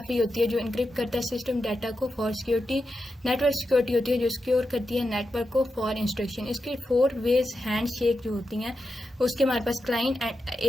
होती है जो इनक्रिप्ट करता है सिस्टम डाटा को फॉर सिक्योरिटी। नेटवर्क सिक्योरिटी होती है जो सिक्योर करती है नेटवर्क को फॉर इंस्ट्रक्शन। इसके 4 वेज हैंड शेक जो होती हैं। उसके हमारे पास client and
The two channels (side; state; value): both; normal; correlation 0.89